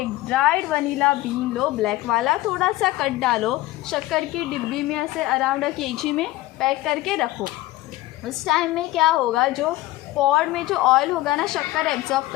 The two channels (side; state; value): right; quieter; 17.4 dB